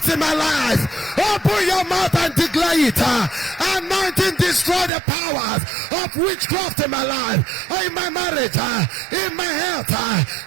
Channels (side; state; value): left; drops out; at 4.9 s